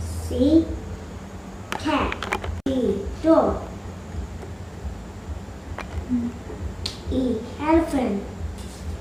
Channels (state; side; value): identical; both; correlation 1.00